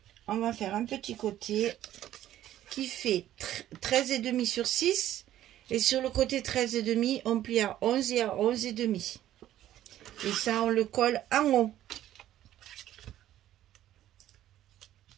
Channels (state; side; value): quieter; left; 12.7 dB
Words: on va faire un petit côté qui fait 13,5 sur 6. Et sur le côté 13,5, on plie à 11 et à 11,5. Et ça, on le colle en haut.